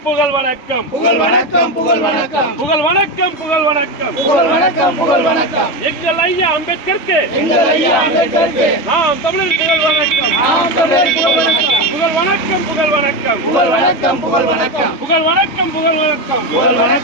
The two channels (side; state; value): right; late; 3.2 ms